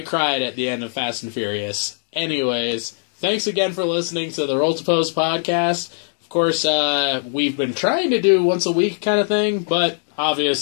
cried at the end of Fast and Furious. Anyways, thanks again for listening to the Roll2Pose podcast. Of course, we've been trying to do once a week kind of thing, but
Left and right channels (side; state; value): right; silent; digital silence